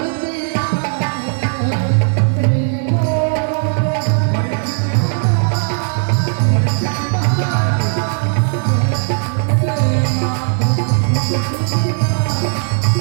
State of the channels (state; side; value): silent; left; 56 dB below the other